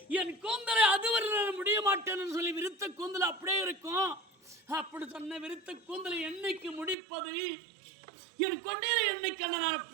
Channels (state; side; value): drops out; left; at 7.0 s